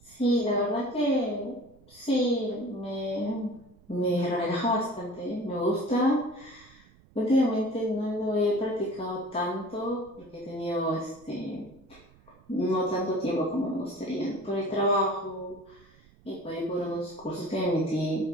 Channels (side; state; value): right; noise; rumble, 27 dB below the sound